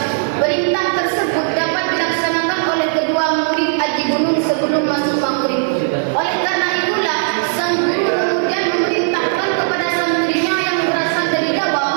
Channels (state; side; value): silent; left; 66 dB below the other